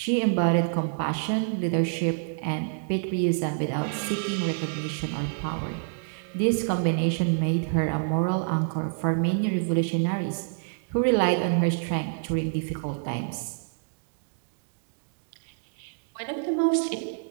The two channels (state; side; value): silent; left; digital silence